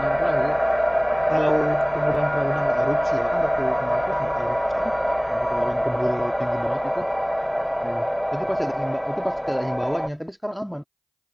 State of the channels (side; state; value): both; identical; correlation 1.00